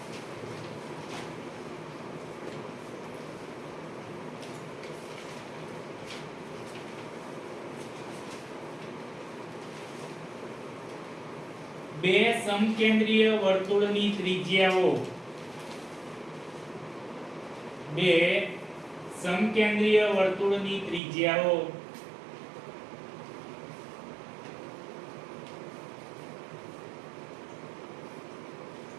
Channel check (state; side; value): drops out; left; at 21.0 s